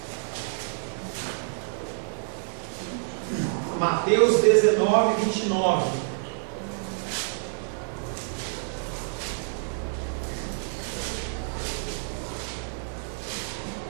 Mateus 19, 29.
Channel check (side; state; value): left; silent; 57 dB below the other